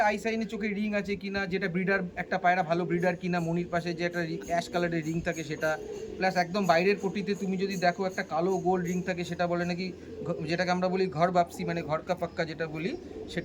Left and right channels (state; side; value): identical; both; correlation 1.00